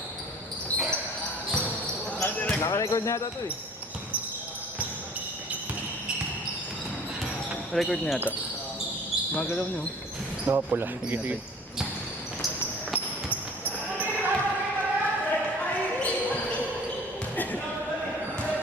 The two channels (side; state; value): both; normal; correlation 0.47